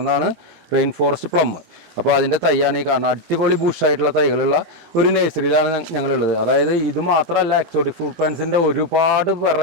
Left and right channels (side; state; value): left; late; 18 ms